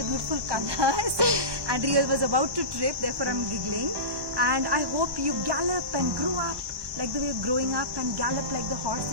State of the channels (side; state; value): left; late; 1.1 ms